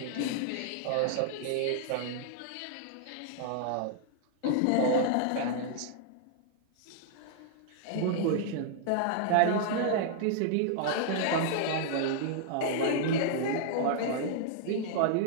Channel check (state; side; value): different; both; correlation -0.01